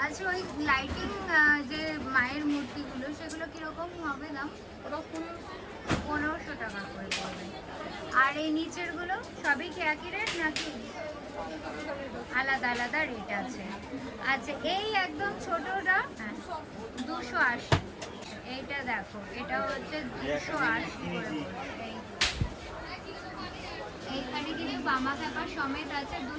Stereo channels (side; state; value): both; identical; correlation 1.00